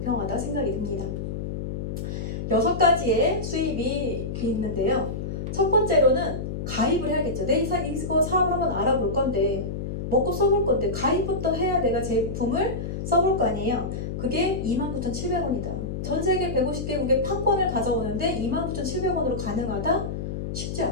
생각이 듭니다. 6가지의 수입이 있는데요. 첫 번째로는 가입을 해야겠죠. 내 이거 사업을 한번 알아볼 건데 먹고 써볼 건데 가입부터 해야 내가 제품을 써볼 거 아니에요. 그게 29,700원이다. 전 세계 150개국의 판권을 가져오는데 29,700원으로 가능하다? 쉽지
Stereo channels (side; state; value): left; noise; hum, 5 dB below the sound